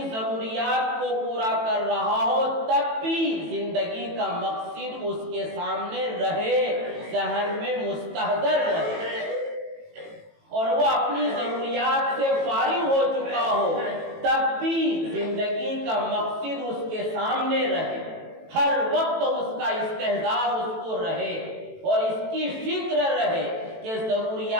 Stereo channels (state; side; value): late; left; 18 ms